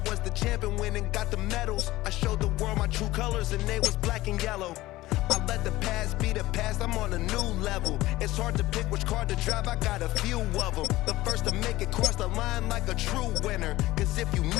was the champion, went and got the medals. I showed the world my true colors and they was black and yellow. I let the past be the past, I'm on a new level. It's hard to pick which car to drive, I got a few of them. The first to make it cross the line like a true winner. Cause if you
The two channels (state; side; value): quieter; right; 17.5 dB